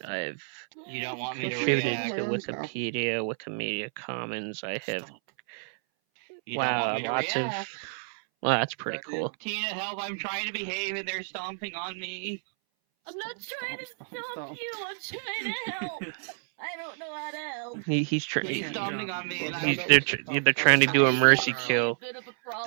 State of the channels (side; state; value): left; silent; 58 dB below the other